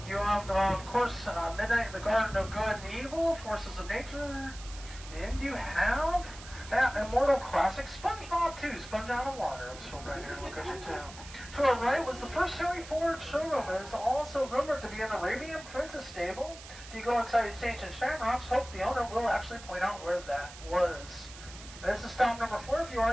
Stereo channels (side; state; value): right; noise; hiss, 16 dB below the sound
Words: You have, of course, Midnight in the Garden of Good and Evil, Forces of Nature. And you have that immortal classic, SpongeBob 2, Sponge Out of Water. It was filmed right here in Location 2. To our right was the first Harry Ford showroom. It is also rumored to be an Arabian Princess stable. If you go inside its ancient shamrocks, hope the owner will actually point out where that was. This is stop number 4. If you